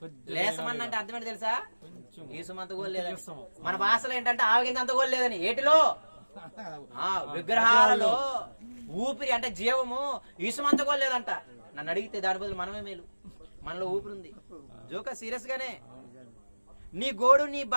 లేసమన్నంటే అర్థం ఏంటి తెలుసా, ఈసుమంత గోలు లేదని. మన భాషలో ఏంటంటే ఆవగింత అంత గోలు లేదని. ఏటిలో, విగ్రహాలలో ఊపిరి అంటే జీవము, ఈసుమంత గోలు లేదంట. నన్ను అడిగితే దాని బదులు మనమే మేలు, మనలో ఊపిరి ఉంది. జోక సీరియస్ గానే, నీ గోడు, నీ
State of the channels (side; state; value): both; inverted; correlation -1.00